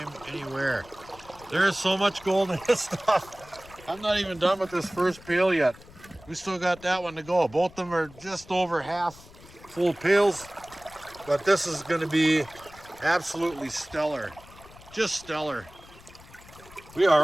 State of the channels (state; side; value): noise; left; rumble, 21 dB below the sound